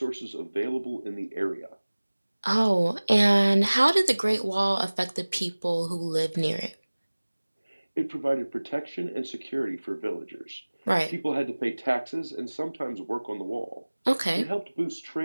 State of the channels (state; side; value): inverted; both; correlation -1.00